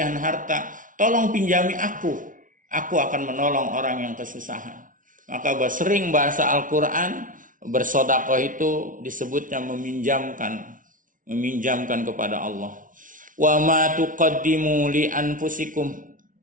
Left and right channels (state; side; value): late; left; 0.38 ms